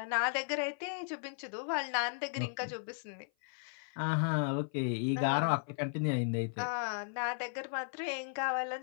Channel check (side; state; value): right; silent; 54 dB below the other